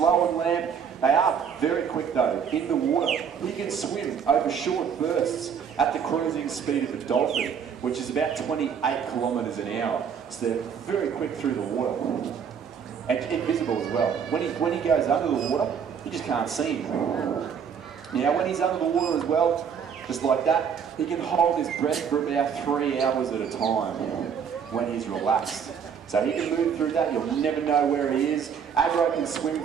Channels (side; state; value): left; quieter; 7.2 dB